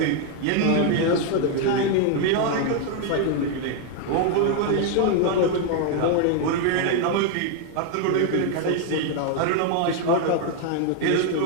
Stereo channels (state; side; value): different; both; correlation 0.00